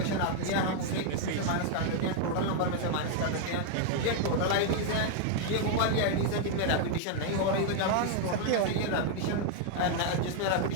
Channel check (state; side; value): different; both; correlation 0.00